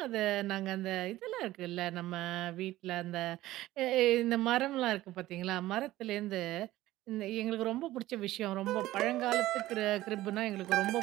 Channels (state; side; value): quieter; left; 16.0 dB